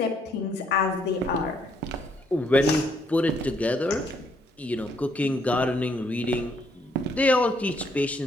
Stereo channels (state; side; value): normal; both; correlation 0.70